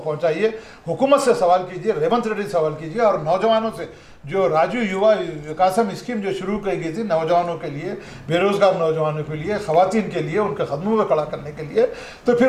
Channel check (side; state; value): both; identical; correlation 1.00